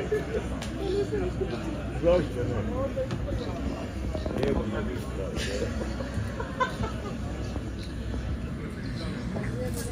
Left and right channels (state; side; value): identical; both; correlation 1.00